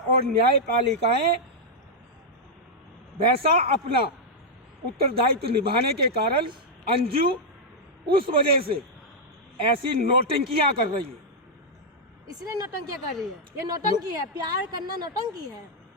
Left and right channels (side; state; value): both; normal; correlation -0.04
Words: न्यायपालिकाएं वैसा अपना उत्तरदायित्व निभाने के कारण अंजू उस वजह से ऐसी नौटंकियां कर रही है। इसलिए नौटंकियां कर रही है, ये नौटंकी है, प्यार करना नौटंकी है।